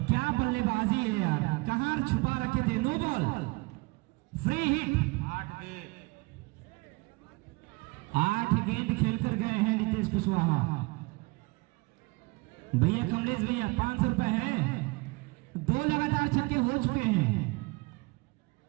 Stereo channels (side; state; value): left; quieter; 25.7 dB